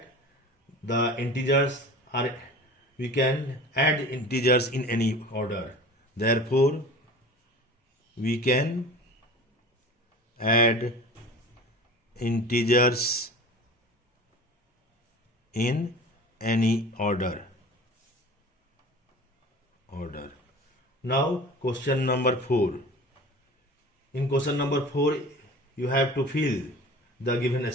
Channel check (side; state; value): both; normal; correlation 0.39